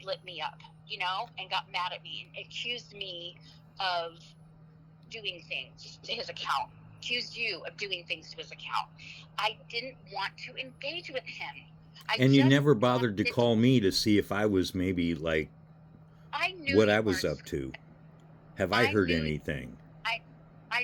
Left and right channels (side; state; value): both; identical; correlation 1.00